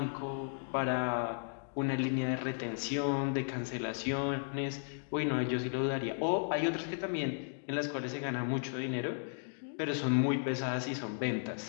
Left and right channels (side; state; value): right; silent; digital silence